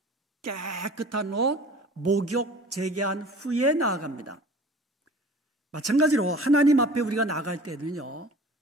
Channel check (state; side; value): normal; both; correlation 0.44